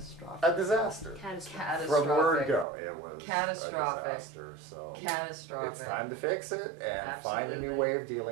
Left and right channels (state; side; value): drops out; left; at 2.7 s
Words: A disaster. Catastrophic. From word go, it was catastrophic. A disaster. So catastrophic. It's time to fix it and find a new way of